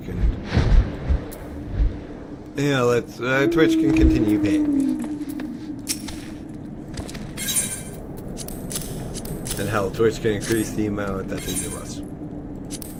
can. Yeah, Twitch can continue paying me. And hell, Twitch can increase the amount that they give us.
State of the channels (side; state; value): both; identical; correlation 1.00